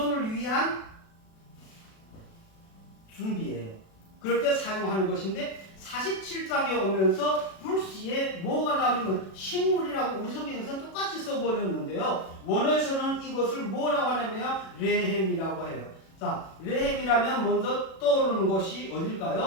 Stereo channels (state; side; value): late; right; 37 ms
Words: 위한 준비예요. 그럴 때 사용하는 것인데 47장에 오면서 불시에 뭐가 나오냐면 식물이라고 우리 성경에서는 똑같이 써버렸는데요. 원어에서는 이것을 뭐라고 하냐면 레헴이라고 해요. 자, 레헴이라면 먼저 떠오르는 것이